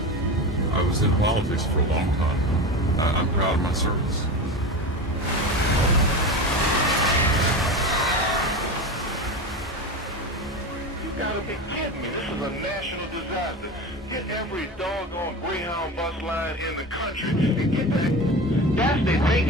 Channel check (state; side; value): normal; both; correlation 0.26